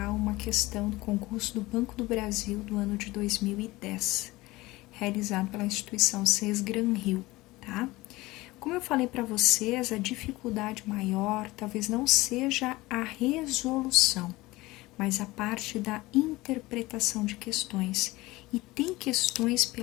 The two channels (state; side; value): quieter; right; 20.0 dB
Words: uma questão do concurso do Banco do Brasil do ano de 2010, realizado pela instituição CES Gran Rio, tá? Como eu falei para vocês, a dificuldade maior talvez não seja a resolução, mas a parte da interpretação de questões. E tem questões